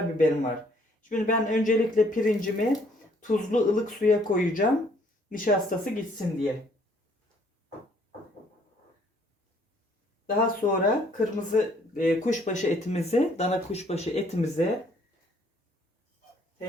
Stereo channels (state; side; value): normal; both; correlation 0.63